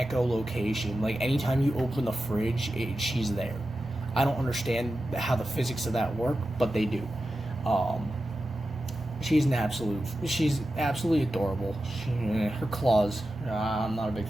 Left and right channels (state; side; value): normal; both; correlation 0.92